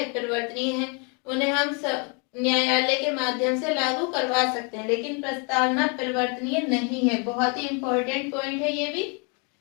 परिवर्तनीय है, उन्हें हम न्यायालय के माध्यम से लागू करवा सकते हैं। लेकिन प्रस्तावना परिवर्तनीय नहीं है। बहुत ही इंपॉर्टेंट पॉइंट है ये भी,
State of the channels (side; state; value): right; quieter; 35.0 dB